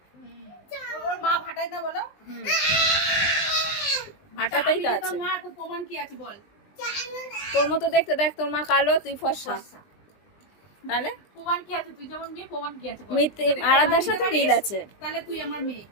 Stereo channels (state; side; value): late; right; 20 ms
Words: মা ভাটায় না বলো? ভাটাতেই তো আছে। প্রমাণ কি আছে বল? তোর মতো দেখতে, দেখ তোর মা কালো, তুই ফর্সা। তাহলে প্রমাণ কি আছে? তুই যেমন মেয়ে, প্রমাণ কি আছে বল? আরাধ্যার সাথে মিল আছে। তাহলে তুই আমার মেয়ে।